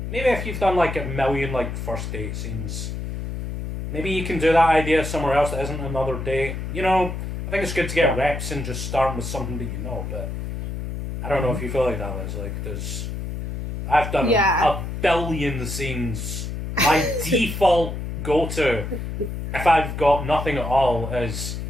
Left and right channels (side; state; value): left; noise; hum, 5 dB below the sound